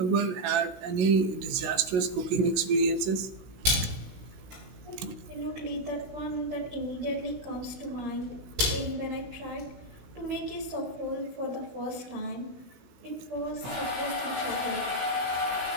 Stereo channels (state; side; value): late; left; 16 ms